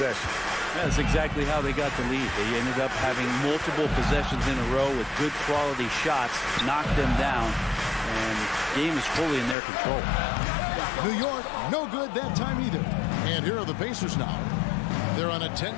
That's exactly how they got the lead. They ended up having multiple possessions in a row with good quality shots, knocked them down, and the game is fully in their control. New York, no good that time either. And here are the Pacers now. They're on a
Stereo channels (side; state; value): right; drops out; at 9.6 s